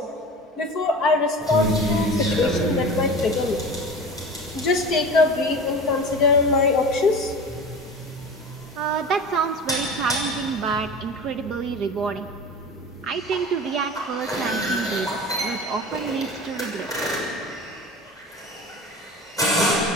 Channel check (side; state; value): both; normal; correlation 0.34